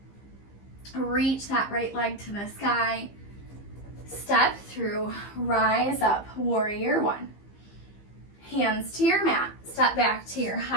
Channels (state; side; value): late; right; 15 ms